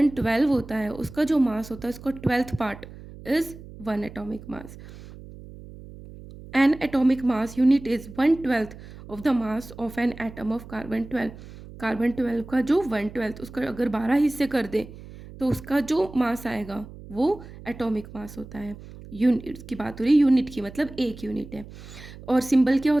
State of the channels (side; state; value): right; noise; hum, 16 dB below the sound